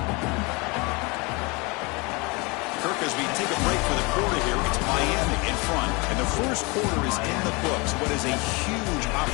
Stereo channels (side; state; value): right; quieter; 27.4 dB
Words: Kirk, as we take a break for the quarter here, it's Miami in front, and the first quarter is in the books. What is a huge